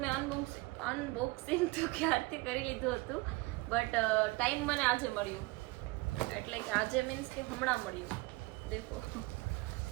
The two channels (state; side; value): quieter; left; 22.6 dB